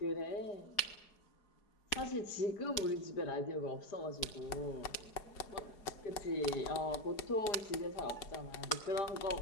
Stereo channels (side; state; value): right; late; 4.8 ms